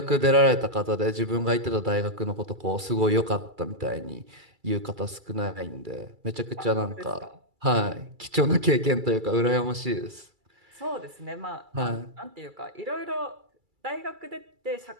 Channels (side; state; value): left; late; 2.3 ms